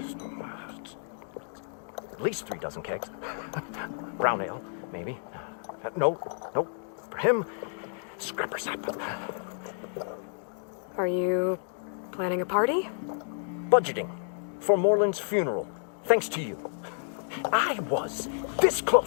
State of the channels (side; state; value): right; silent; digital silence